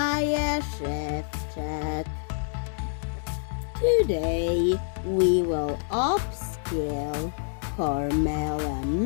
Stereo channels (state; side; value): silent; right; digital silence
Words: Szewczak. Today we will upscale Carmella